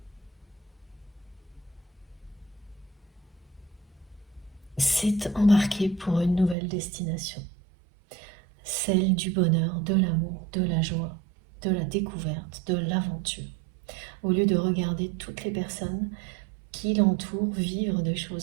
C'est embarquer pour une nouvelle destination. Celle du bonheur, de l'amour, de la joie, de la découverte, de l'aventure. Au lieu de regarder toutes les personnes qui l'entourent vivre des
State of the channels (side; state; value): left; drops out; at 6.6 s